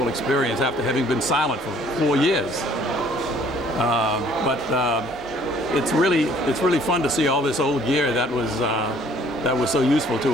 experience after having been silent for 4 years. But it's really fun to see all this old gear that was so useful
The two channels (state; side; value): normal; both; correlation 0.58